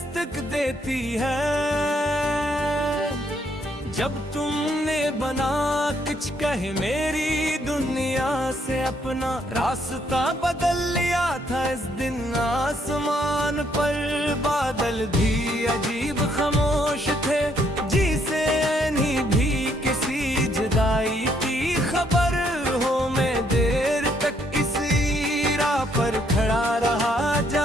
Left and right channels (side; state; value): both; normal; correlation 0.71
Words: देती है। जब तुमने बना कुछ कहे मेरी दुनिया से अपना रास्ता बदल लिया था, इस दिन आसमान पर बादल भी अजीब खामोश थे, जिसे नहीं भी किसी जुदाई की खबर हो। मैं देर तक इसी राह पर खड़ा रहा